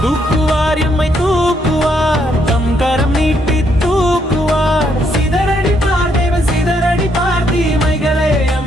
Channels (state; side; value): normal; both; correlation 0.73